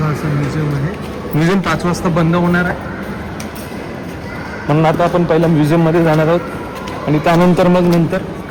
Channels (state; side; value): identical; both; correlation 1.00